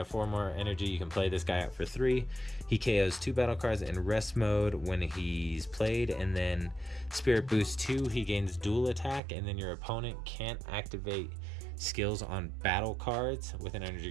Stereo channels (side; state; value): left; drops out; at 9.2 s